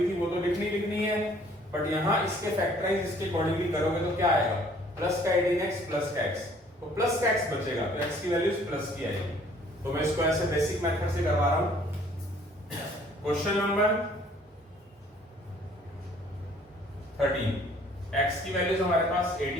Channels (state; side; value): normal; both; correlation 0.57